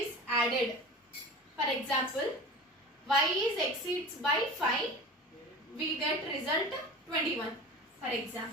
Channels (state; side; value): normal; both; correlation 0.35